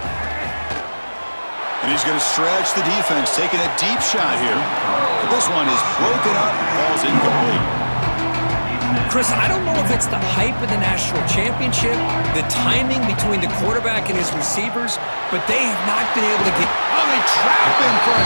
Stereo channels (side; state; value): both; inverted; correlation -1.00